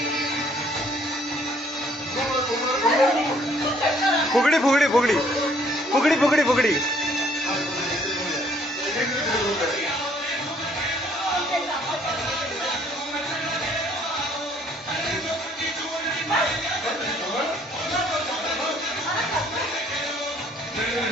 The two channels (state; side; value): normal; both; correlation 0.62